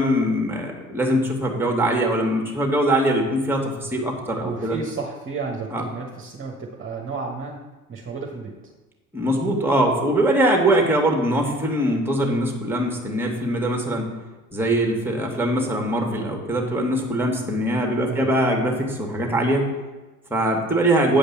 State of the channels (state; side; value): normal; both; correlation 0.52